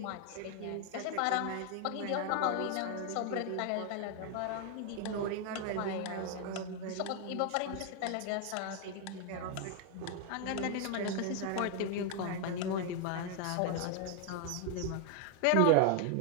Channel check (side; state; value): both; different; correlation 0.00